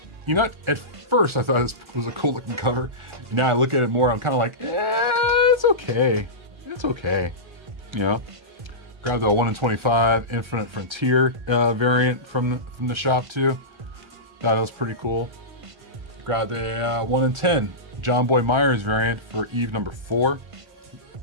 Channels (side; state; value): left; late; 1.4 ms